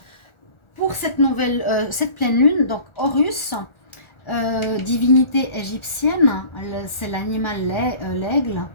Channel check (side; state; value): right; late; 1.4 ms